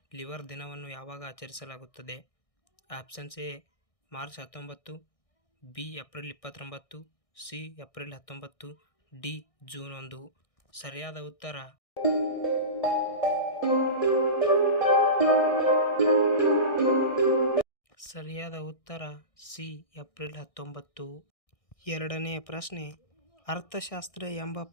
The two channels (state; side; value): late; right; 1.6 ms